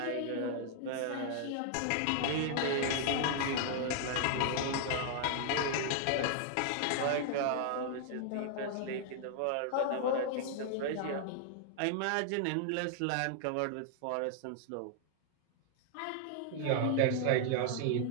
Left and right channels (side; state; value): both; different; correlation 0.00